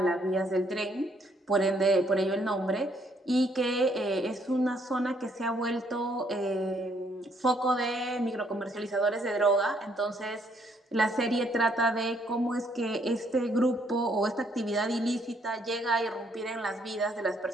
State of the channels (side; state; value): both; normal; correlation 0.69